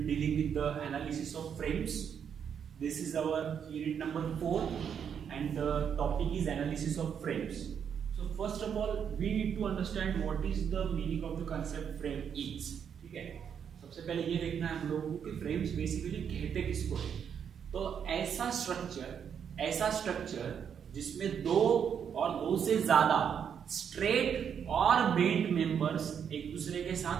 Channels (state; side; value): quieter; left; 7.8 dB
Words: be dealing with the analysis of frames. This is our unit number 4 and the topic is analysis of frames. So first of all, we need to understand what is the meaning of the concept frame is. ठीक है, सबसे पहले ये देखना है हम लोगों को कि frames basically कहते किसको है। तो ऐसा स्ट्रक्चर जिसमें दो और दो से ज्यादा स्ट्रेट और बेंट मेंबर्स एक दूसरे के